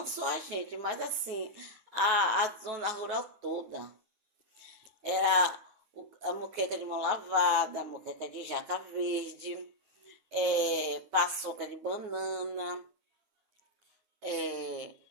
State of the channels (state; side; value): late; left; 9.7 ms